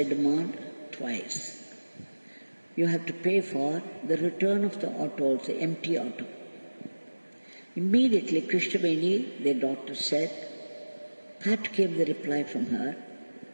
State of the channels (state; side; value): inverted; both; correlation -1.00